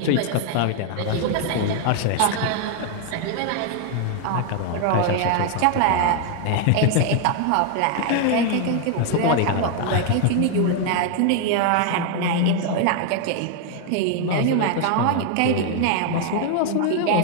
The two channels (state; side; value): different; both; correlation 0.00